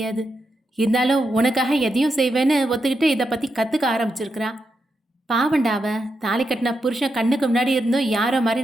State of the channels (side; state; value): both; normal; correlation 0.85